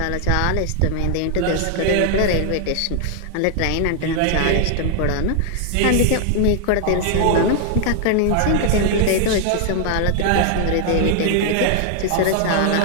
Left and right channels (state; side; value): different; both; correlation 0.00